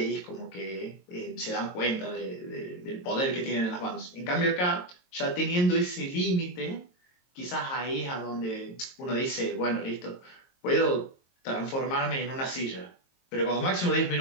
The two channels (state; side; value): late; right; 22 ms